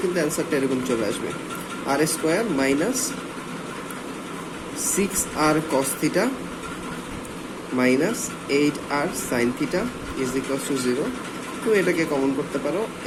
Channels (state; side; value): identical; both; correlation 1.00